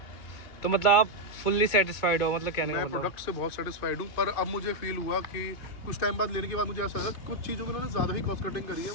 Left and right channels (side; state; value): right; late; 2.3 ms